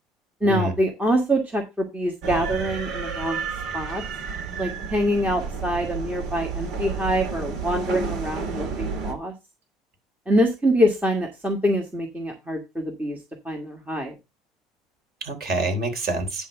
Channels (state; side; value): normal; both; correlation 0.67